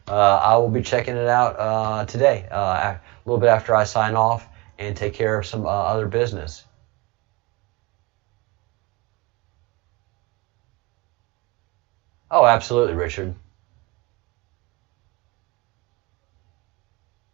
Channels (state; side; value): quieter; left; 25.0 dB